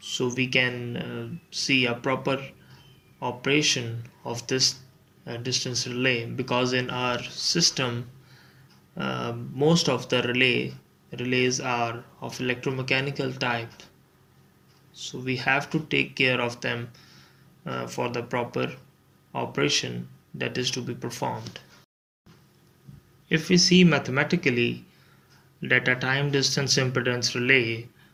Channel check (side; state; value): both; identical; correlation 1.00